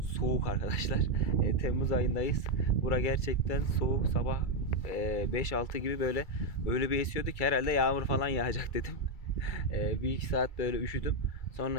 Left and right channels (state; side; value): late; right; 2.3 ms